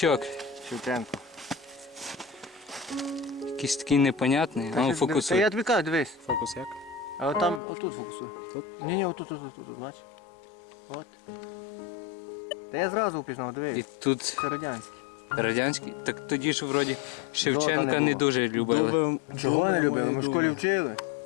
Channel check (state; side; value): drops out; right; at 7.6 s